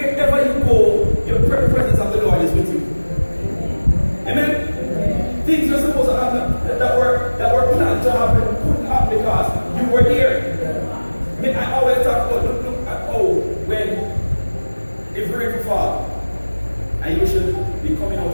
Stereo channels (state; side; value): inverted; both; correlation -1.00